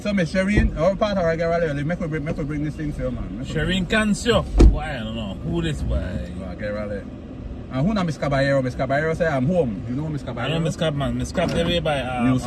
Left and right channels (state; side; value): identical; both; correlation 1.00